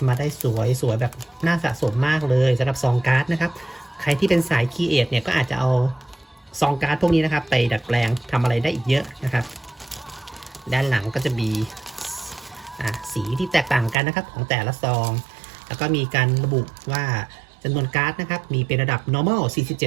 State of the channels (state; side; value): drops out; left; at 14.0 s